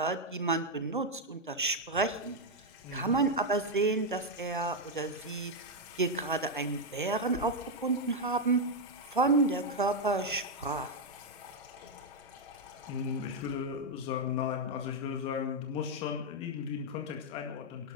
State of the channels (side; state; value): both; normal; correlation 0.01